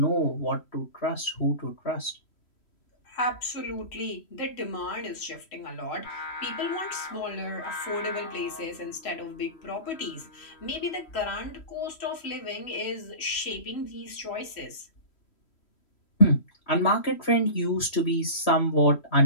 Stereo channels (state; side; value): late; right; 3.1 ms